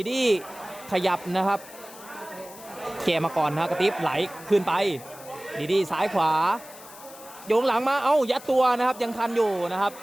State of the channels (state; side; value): noise; left; hiss, 18 dB below the sound